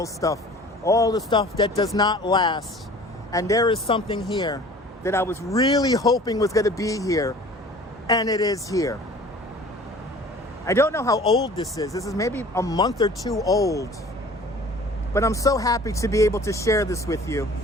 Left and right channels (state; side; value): normal; both; correlation 0.46